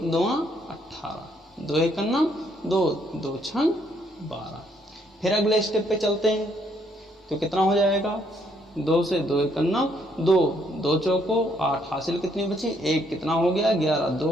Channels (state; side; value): normal; both; correlation 0.70